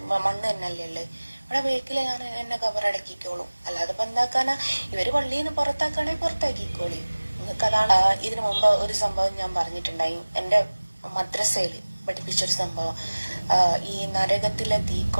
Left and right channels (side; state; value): both; inverted; correlation -1.00